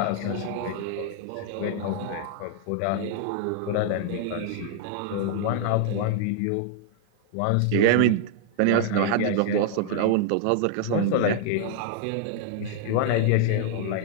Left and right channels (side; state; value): both; different; correlation 0.00